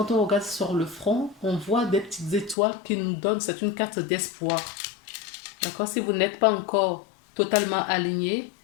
on regarde sur le front, on voit des petites étoiles qui nous donnent, c'est une carte d'espoir. D'accord. Si vous n'êtes pas encore totalement aligné,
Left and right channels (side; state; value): right; drops out; at 2.6 s